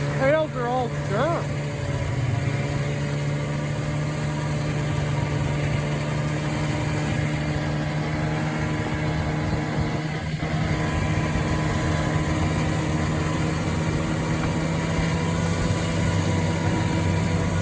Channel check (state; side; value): identical; both; correlation 1.00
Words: Trails are all dirt.